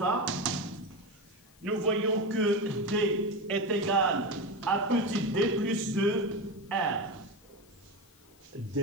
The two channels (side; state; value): left; noise; hiss, 28 dB below the sound